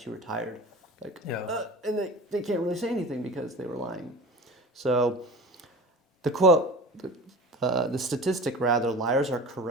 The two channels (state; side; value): normal; both; correlation 0.36